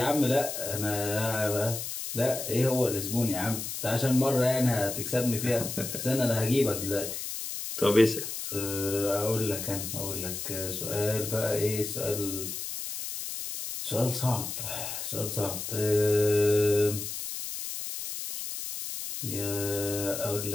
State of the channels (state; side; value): noise; left; hiss, 6 dB below the sound